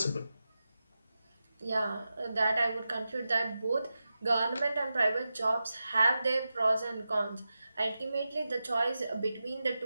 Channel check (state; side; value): inverted; both; correlation -0.92